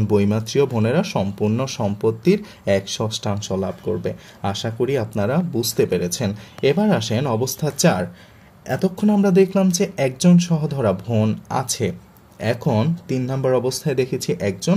বৈমাত্রীয় বোনেরা সম্পূর্ণ সম্পত্তির 1/6 লাভ করবে। আশা করি আপনারা বুঝতে পেরেছেন। এবার আসেন অবস্থা 4। এতক্ষণ আমরা দেখলাম যে একজন সহধরা বোন আছে। এখন 3 নম্বর অবস্থায় দেখেছি 1 জন।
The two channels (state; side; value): identical; both; correlation 1.00